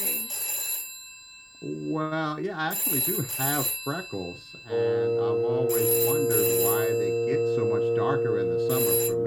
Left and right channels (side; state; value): both; identical; correlation 1.00